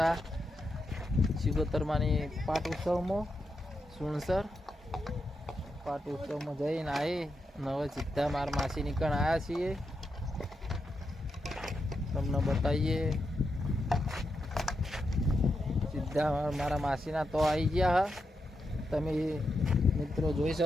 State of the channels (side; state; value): both; normal; correlation 0.85